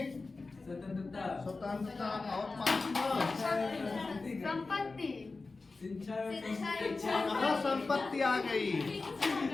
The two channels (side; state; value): right; quieter; 3.8 dB